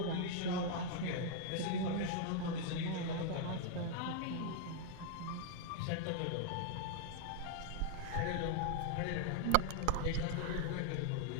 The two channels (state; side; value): different; both; correlation 0.00